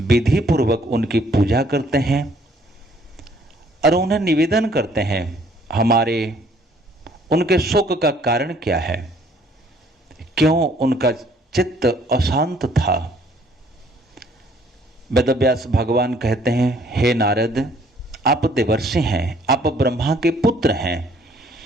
विधि पूर्वक उनकी पूजा करते हैं और उन्हें निवेदन करते हैं हमारे उनके शोक का कारण क्या है, क्यों उनका चित्त अशांत था। वेदव्यास भगवान कहते हैं, हे नारद, आप देवर्षि हैं, आप ब्रह्मा के पुत्र हैं,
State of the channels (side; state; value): both; normal; correlation 0.62